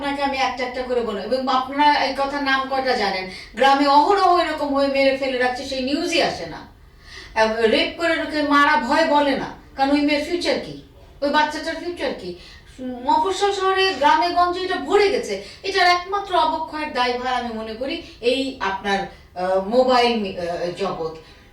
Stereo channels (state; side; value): identical; both; correlation 1.00